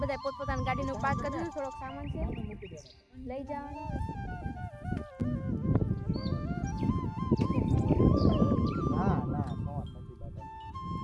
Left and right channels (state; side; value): identical; both; correlation 1.00